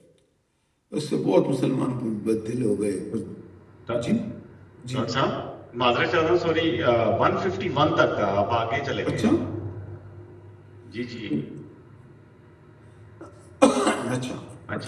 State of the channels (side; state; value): both; identical; correlation 1.00